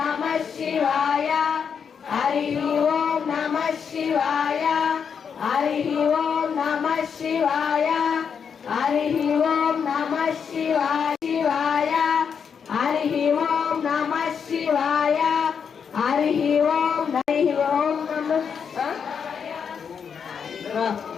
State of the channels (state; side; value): quieter; right; 6.8 dB